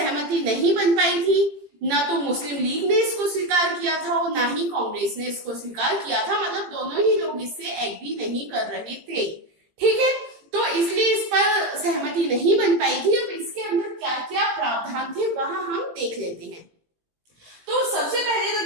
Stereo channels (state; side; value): late; left; 18 ms